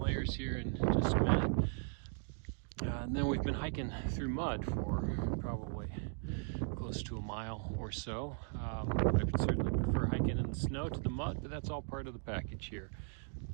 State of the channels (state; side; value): silent; left; 53 dB below the other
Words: here in just a minute. And then we've been hiking through mud for probably close to a mile or so. I would certainly prefer hiking in the snow to the mud, but that's all part of the package here.